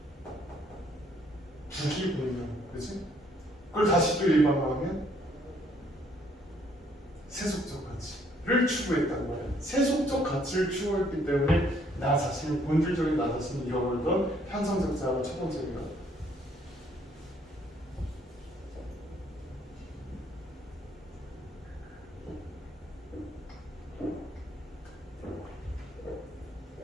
북이 보이면, 그렇지? 그걸 다시 또 일반화하면 세속적 가치를 추구했단 말이야. 세속적 가치를 추구했기 때문에 나 자신이 본질적인 나 자신을 잃어버리던 현상적 자아가 첫 번째입니다.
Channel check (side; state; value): both; normal; correlation 0.65